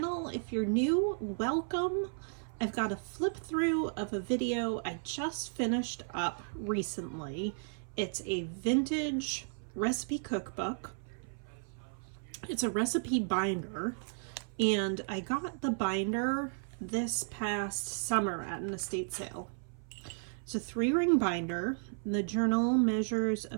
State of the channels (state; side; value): silent; left; 55 dB below the other